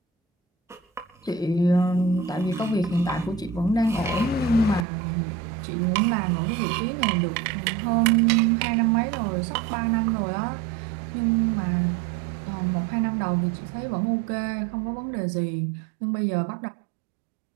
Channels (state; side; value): drops out; left; at 4.9 s